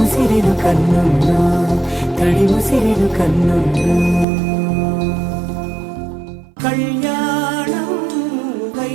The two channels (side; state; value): left; drops out; at 4.2 s